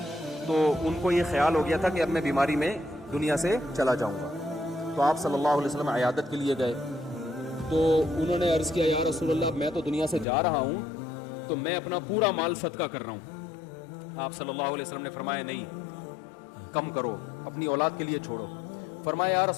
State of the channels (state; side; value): drops out; right; at 10.2 s